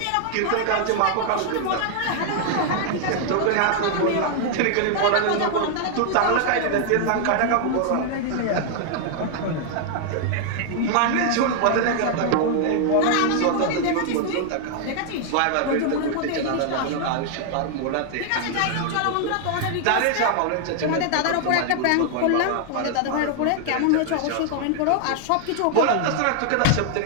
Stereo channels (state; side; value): different; both; correlation 0.00